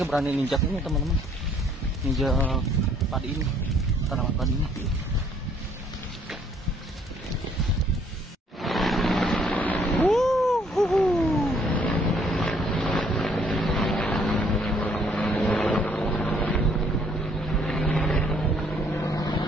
berani ninjak ini teman-teman, ninjak padi ini, tanaman padi ini.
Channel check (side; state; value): both; normal; correlation 0.64